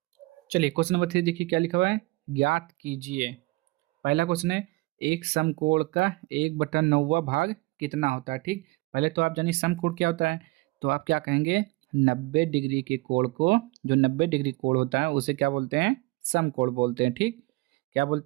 चलिए क्वेश्चन नंबर 3 देखिए क्या लिखा हुआ है, ज्ञात कीजिए। पहला क्वेश्चन है, एक समकोण का 1/9 भाग कितना होता है, ठीक। पहले तो आप जानिए समकोण क्या होता है, तो आप क्या कहेंगे, 90 डिग्री के कोण को, जो 90 डिग्री कोण होता है उसे क्या बोलते हैं, समकोण बोलते हैं, ठीक। क्या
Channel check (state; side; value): quieter; left; 22.5 dB